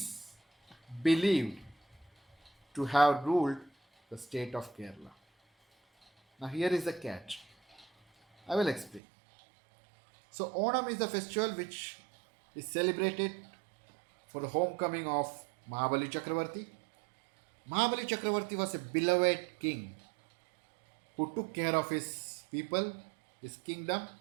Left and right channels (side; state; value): left; drops out; at 9.0 s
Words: believed to have ruled the state of Kerala. Now, here is the catch. I will explain. So, Onam is the festival which is celebrated for the homecoming of Mahabali Chakravarti. Mahabali Chakravarti was a beloved king who took care of his people, his kingdom,